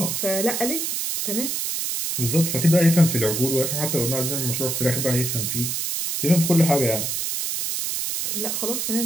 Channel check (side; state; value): right; noise; hiss, 1 dB below the sound